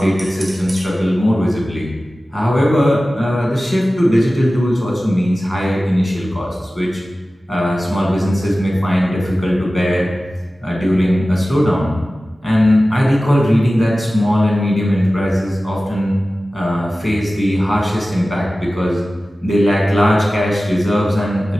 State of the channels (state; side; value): normal; both; correlation 0.96